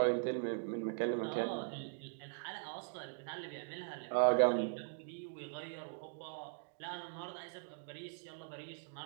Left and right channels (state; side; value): silent; left; digital silence